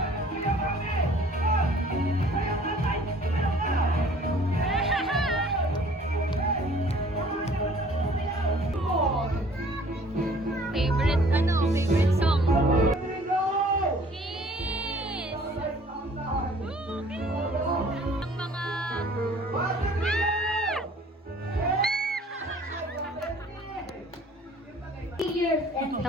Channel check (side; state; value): both; normal; correlation 0.54